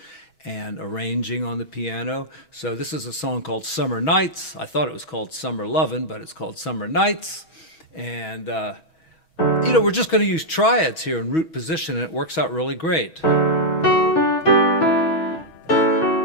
and arranging on the piano. So this is a song called Summer Nights. I thought it was called Summer Lovin', but it's called Summer Nights. And we're just going to use triads here in root position, and it works out really great.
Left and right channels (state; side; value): late; right; 6.2 ms